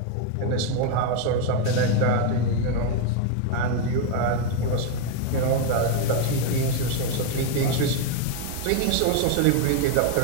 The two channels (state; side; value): different; both; correlation 0.01